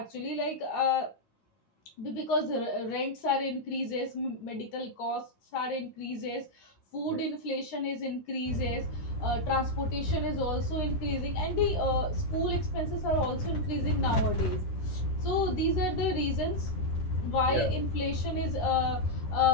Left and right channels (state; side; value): late; right; 9.9 ms